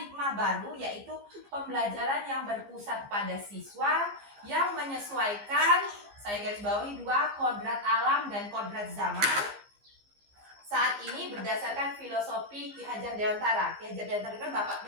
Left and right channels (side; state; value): left; late; 15 ms